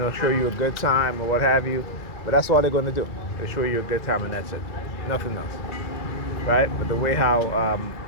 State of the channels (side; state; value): right; late; 2.3 ms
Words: show you a good time or what have you. But that's all they're going to do. They show you a good time and that's it. Nothing else. Right? But the way how